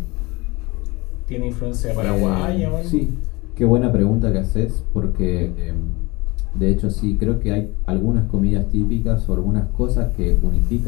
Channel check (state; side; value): quieter; right; 24.1 dB